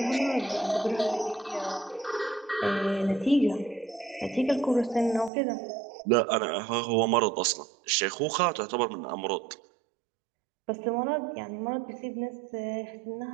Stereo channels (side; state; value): left; drops out; at 5.3 s